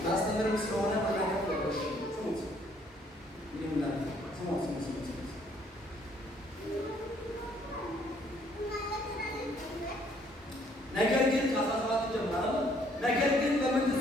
ላስተምርም ስለሆነ መናገር ተቆሽ ስሙት ይላል። ስሙት ነገር ግን ከ17 ጀምሮ ነገር ግን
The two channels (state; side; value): normal; both; correlation 0.64